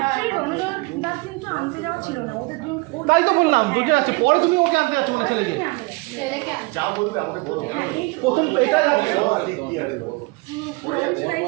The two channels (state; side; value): quieter; left; 26.3 dB